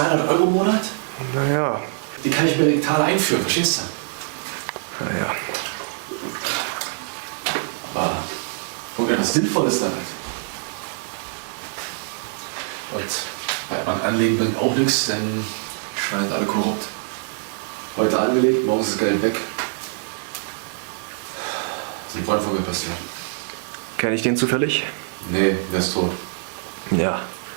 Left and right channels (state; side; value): silent; left; digital silence